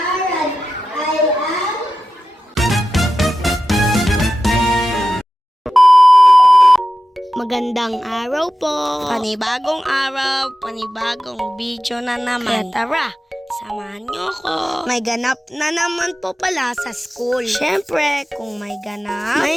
Magandang araw po. Panibagong araw, panibagong video na naman. Kaya tara, samahan niyo ako. May ganap na naman po pala sa school. Siyempre, kung may ganap,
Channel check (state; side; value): normal; both; correlation 0.92